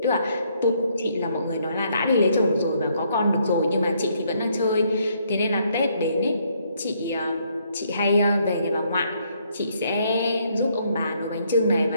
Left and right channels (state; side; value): inverted; both; correlation -0.70